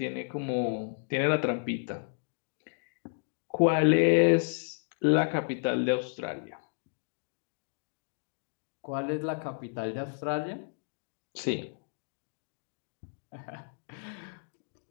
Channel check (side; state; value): right; silent; digital silence